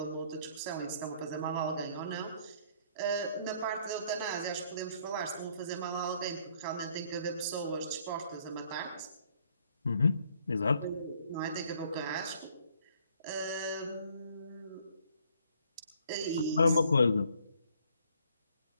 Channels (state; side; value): inverted; both; correlation -0.64